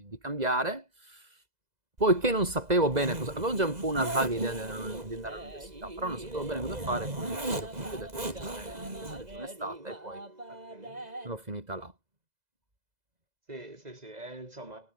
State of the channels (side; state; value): left; late; 2.0 ms